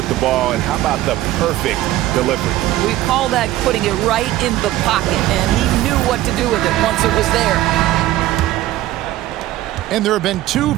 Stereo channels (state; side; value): quieter; left; 15.2 dB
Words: the ball, and how about the perfect delivery? We call that putting it right in the pocket, and he knew what to do with it once it was there. And there have been 2